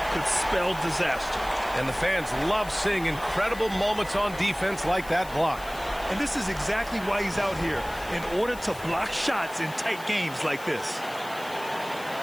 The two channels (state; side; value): noise; left; hiss, 18 dB below the sound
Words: could spell disaster. And the fans love seeing incredible moments on defense like that block. And this is exactly why he's out here, in order to block shots in tight games like this.